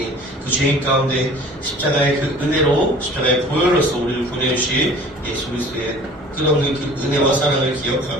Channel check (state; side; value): normal; both; correlation 0.48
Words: 그 죄인 가운데 십자가의 그 은혜로 십자가의 보혈로서 우리를 보내주신 예수 그리스도의 끝없는 그 은혜와 사랑을